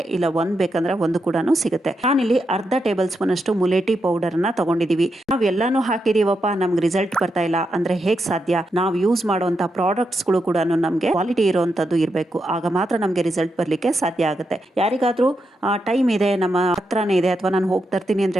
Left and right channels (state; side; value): normal; both; correlation 0.84